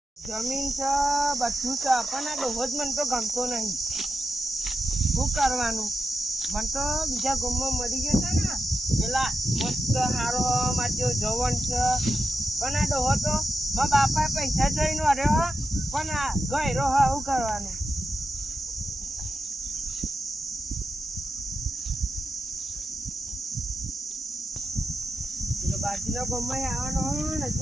જમીન છે બધું છે પણ આ ડોહો જ મને તો ગમતો નહીં. શું કરવાનું? મને તો બીજા ગામમાં મળી ગયો છે ને પેલા મસ્ત હારો મારો જવન છે, પણ આ ડોહો તો મારા બાપાએ પૈસા જોઈને વર્યો પણ આ ગયરો હા. શું કરવાનું? બાજુના ગામમાં આવવાનો હોય ને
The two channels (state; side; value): normal; both; correlation 0.88